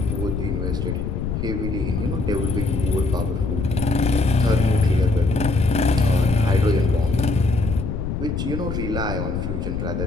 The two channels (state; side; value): noise; left; rumble, 3 dB below the sound